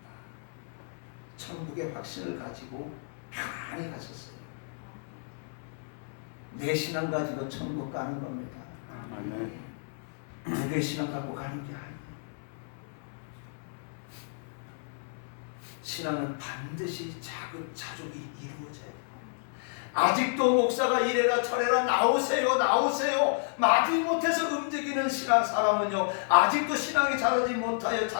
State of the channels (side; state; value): right; silent; 57 dB below the other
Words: 천국의 확신을 가지고 편안히 가셨어요. 내 신앙 가지고 천국 가는 겁니다. 누구의 신앙 갖고 가는 게 아니에요. 신앙은 반드시 자족이 이루어져요. 아직도 목사가 이래라 저래라 나오세요 마지못해서 움직이는 신앙 사람은요, 아직도 신앙이 자라지 못하여